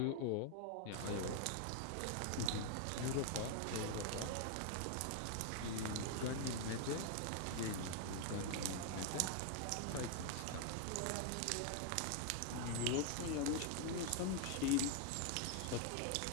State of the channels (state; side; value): different; both; correlation 0.00